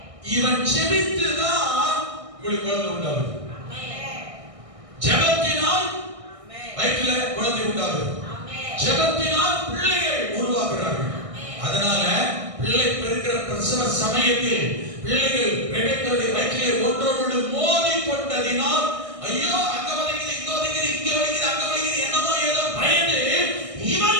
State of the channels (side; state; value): left; late; 1.6 ms